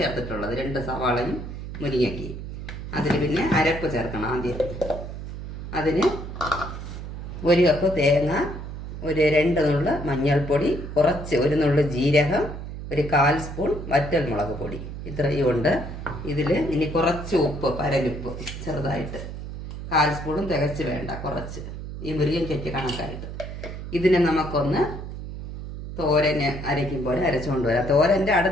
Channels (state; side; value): noise; right; hum, 9 dB below the sound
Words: ചേർത്തിട്ടുള്ളത്, 2 സവാളയും മുരിങ്ങയ്ക്കയും. അതിൽ പിന്നെ അരപ്പ് ചേർക്കണം. ആദ്യം അതിന് 1 കപ്പ് തേങ്ങ, ഒരു 2 നുള്ള് മഞ്ഞൾപ്പൊടി, കുറച്ച് 1 നുള്ള് ജീരകം, ഒരു 1/4 സ്പൂൺ വറ്റൽ മുളക് പൊടി, ഇത്രയും ഉണ്ട്. ഇതിൽ ഇനി കുറച്ച് ഉപ്പ്, പരലുപ്പ് ചെറുതായിട്ട് 1/4 സ്പൂണും തികച്ച് വേണ്ട, കുറച്ച് ഈ മുരിങ്ങയ്ക്ക് കണക്കായിട്ട്. ഇതിനെ നമുക്കൊന്ന് തോരന് അരയ്ക്കും പോലെ അരച്ചുകൊണ്ട് വരാം. തോരൻ്റെ